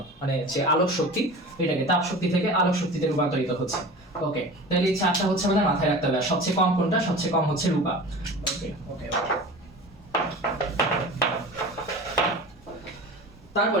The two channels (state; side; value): normal; both; correlation 0.36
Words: মানে যে আলোক শক্তি, এটাকে তাপ শক্তি থেকে আলোক শক্তিতে রূপান্তরিত হচ্ছে। ওকে, তাহলে এই চারটা হচ্ছে আমাদের মাথায় রাখতে হবে। সবচেয়ে কম কোনটা? সবচেয়ে কম হচ্ছে রূপা। ওকে ওকে ওকে।